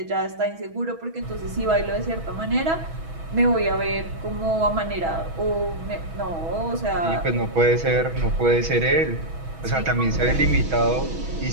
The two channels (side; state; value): left; late; 6.2 ms